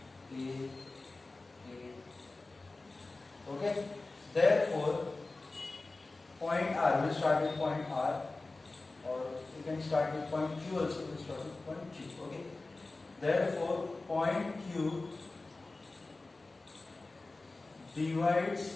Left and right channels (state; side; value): quieter; right; 3.3 dB